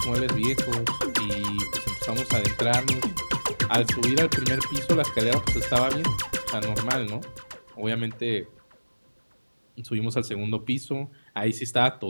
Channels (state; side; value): inverted; both; correlation -1.00